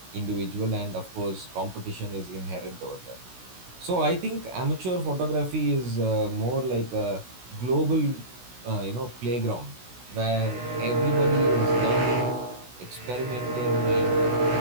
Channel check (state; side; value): late; left; 16 ms